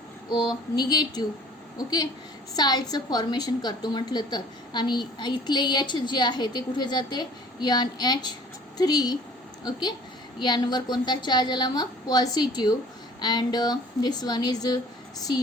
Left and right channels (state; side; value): normal; both; correlation 0.50